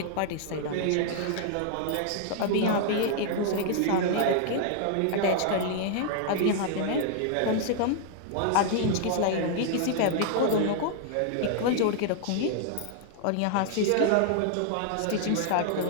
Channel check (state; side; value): different; both; correlation -0.01